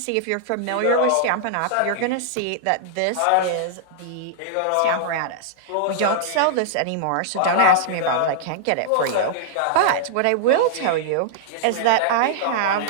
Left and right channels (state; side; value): different; both; correlation -0.01